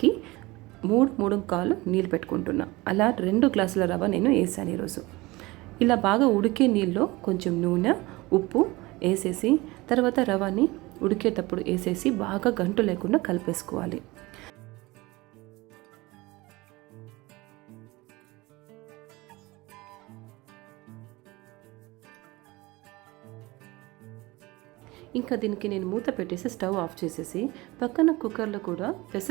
3 నీళ్ళు పెట్టుకుంటున్నా. అలా 2 గ్లాసుల రవ నేను వేసాను ఈరోజు. ఇలా బాగా ఉడికే నీళ్ళలో కొంచెం నూనె, ఉప్పు వేసేసి తర్వాత రవాని ఉడికేటప్పుడు వేసేసి బాగా గంటు లేకుండా కలిపేసుకోవాలి. ఇంకా దీనికి నేను మూత పెట్టేసి స్టవ్ ఆఫ్ చేసేసి పక్కన కుక్కర్లో కూడా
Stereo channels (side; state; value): left; quieter; 21.7 dB